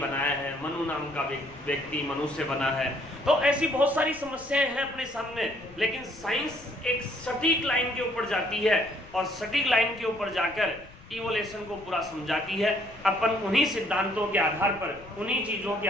है, मनु नाम का व्यक्ति मनुष्य बना है। तो ऐसी बहुत सारी समस्याएं हैं अपने सामने, लेकिन साइंस एक सटीक लाइन के ऊपर जाती है और सटीक लाइन के ऊपर जाकर इवोल्यूशन को पूरा समझाती है। अपन उन्हीं सिद्धांतों के आधार पर, उन्हीं चीजों के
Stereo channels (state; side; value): noise; left; rumble, 21 dB below the sound